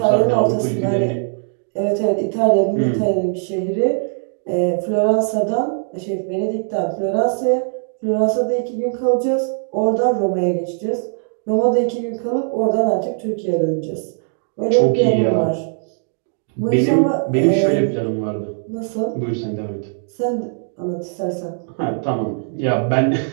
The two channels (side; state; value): left; silent; digital silence